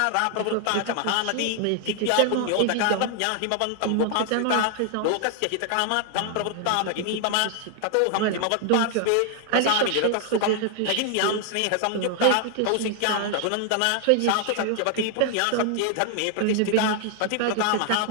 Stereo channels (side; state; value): both; different; correlation 0.00